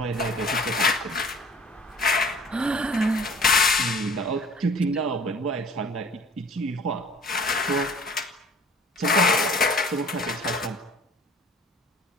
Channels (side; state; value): both; normal; correlation 0.48